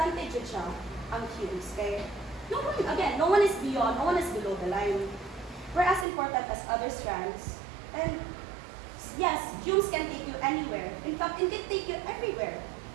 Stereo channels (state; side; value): drops out; left; at 6.1 s